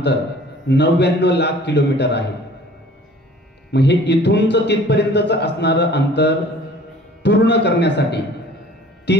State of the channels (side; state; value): both; normal; correlation 0.49